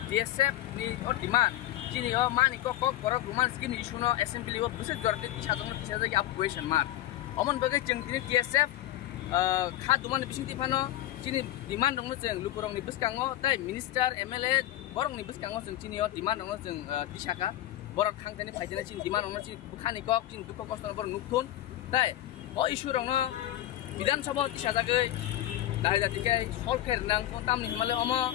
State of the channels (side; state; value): right; quieter; 13.8 dB